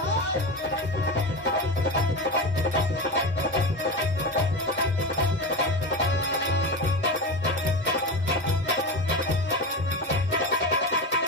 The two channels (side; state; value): both; normal; correlation 0.22